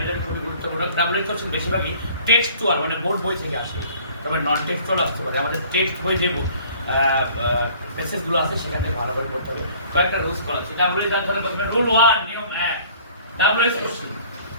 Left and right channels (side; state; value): both; inverted; correlation -0.52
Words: এর খুবই গুরুত্বপূর্ণ। ডাব্লিউএস কোশ্চেন বেশিরভাগই টেক্সটুয়াল মানে বোর্ড বই থেকে আসে, তবে নন টেক্সটুয়াল আসতে পারে। আমাদের টেক্সট বই যে প্যাসেজগুলো আছে সেখান থেকে ভালোভাবে পড়তে হবে। কয়েকটা রুলস করা আছে। ডাব্লিউএস জানতে হলে প্রথমে রুল 1 নিয়ম 1 ডাব্লিউএস কোশ্চেন